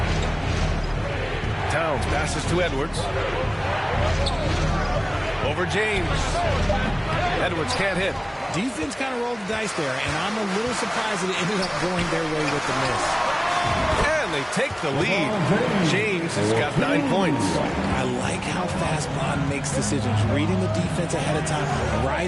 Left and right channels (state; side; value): identical; both; correlation 1.00